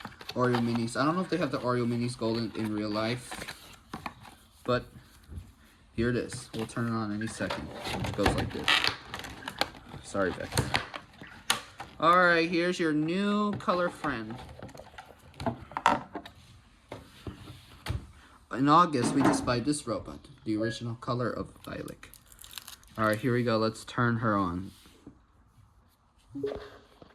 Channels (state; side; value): identical; both; correlation 1.00